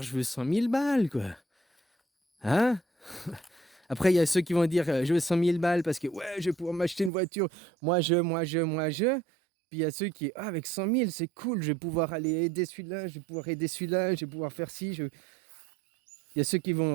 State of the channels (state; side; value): drops out; left; at 7.1 s